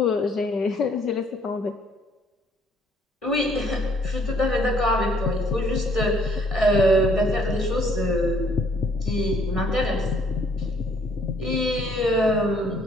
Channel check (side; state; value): both; normal; correlation 0.63